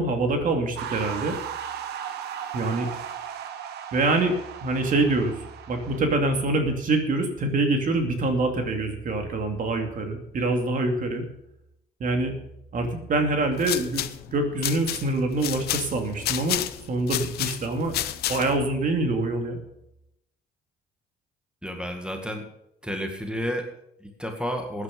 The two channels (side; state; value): both; normal; correlation 0.37